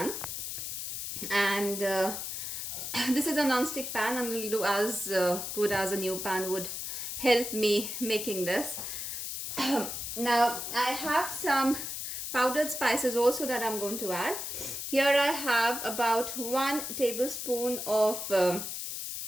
and this is a non-stick pan, and will do as good as a new pan would help me making this. Now I have some powdered spices also that I'm going to add. Here I have about 1 tablespoon of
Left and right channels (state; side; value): noise; left; hiss, 5 dB below the sound